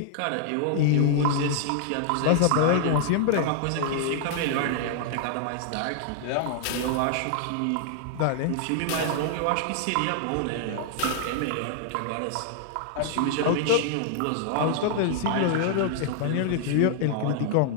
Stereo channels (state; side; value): different; both; correlation 0.00